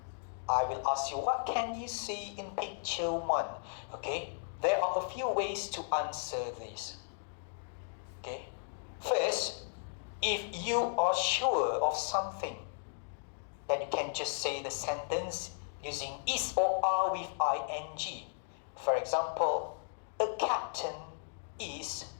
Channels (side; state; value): right; silent; digital silence